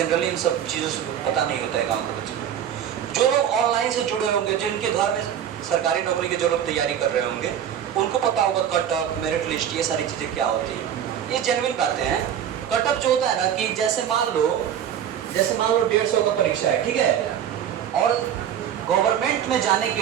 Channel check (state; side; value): quieter; left; 9.6 dB